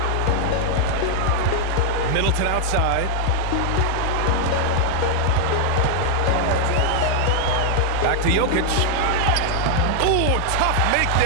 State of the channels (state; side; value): different; both; correlation -0.01